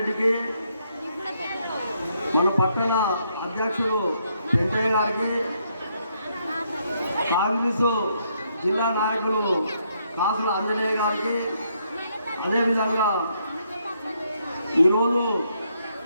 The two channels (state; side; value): inverted; both; correlation -0.74